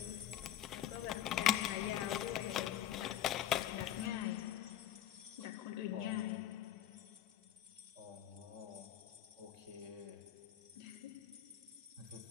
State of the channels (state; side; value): quieter; right; 11.6 dB